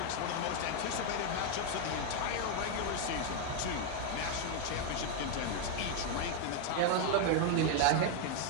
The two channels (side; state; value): both; different; correlation 0.01